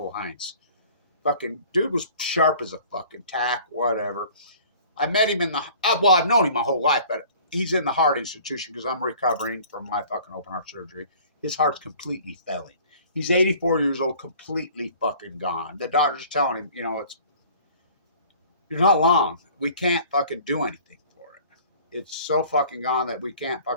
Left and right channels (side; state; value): both; inverted; correlation -0.49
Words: Heinz. Fucking dude was sharp as a fucking tack, whatever. I met him in the... well, I've known him my whole life, but he's in the heart institution because I'm recovering from my fucking open heart surgery. His heart's completely failing. He's 84 years old, completely fucking gone. The doctor's telling him, you know, you're not long. We can't fucking do anything for it. It's so fucking gone that we can't